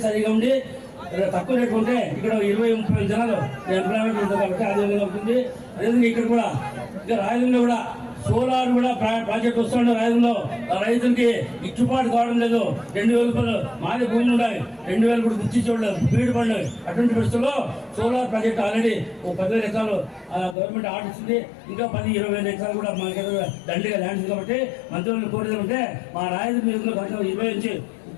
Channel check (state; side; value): drops out; right; at 20.6 s